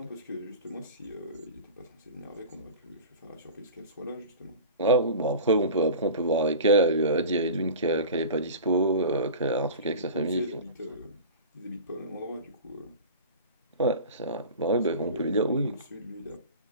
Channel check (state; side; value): inverted; both; correlation -0.36